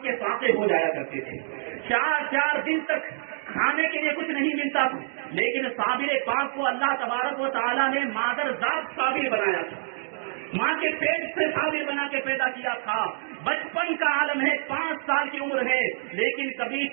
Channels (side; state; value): left; silent; digital silence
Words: فاقے ہو جایا کرتے تھے۔ 4 دن تک کھانے کے لیے کچھ نہیں ملتا تھا، لیکن صابر پاک کو اللہ تبارک و تعالیٰ نے مادر ذات صابر بنایا تھا، ماں کے پیٹ سے صابر بنا کے پیدا کیا تھا۔ بچپن کا عالم ہے، 5 سال کی عمر ہے، لیکن کبھی